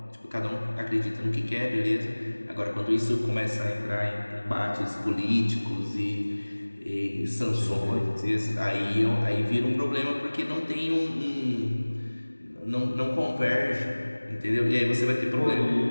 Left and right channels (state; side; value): inverted; both; correlation -1.00